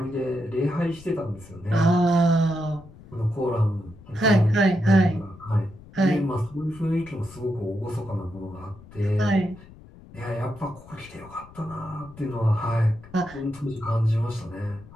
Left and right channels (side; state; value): left; noise; rumble, 20 dB below the sound